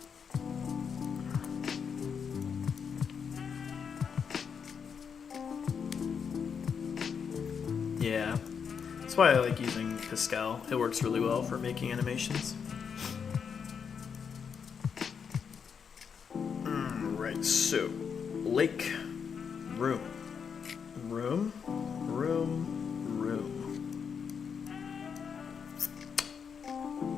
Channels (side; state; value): right; quieter; 6.6 dB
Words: Yeah, that's why I like using Pascal. It works really well for making animations. Right, so lake, room, room, room, room.